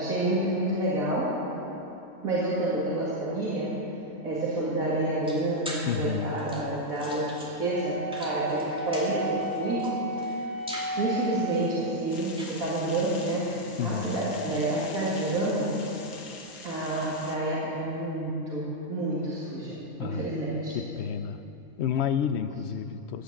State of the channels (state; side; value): normal; both; correlation -0.01